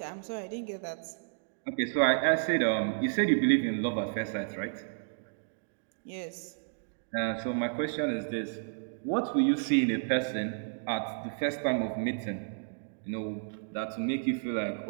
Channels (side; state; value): left; silent; digital silence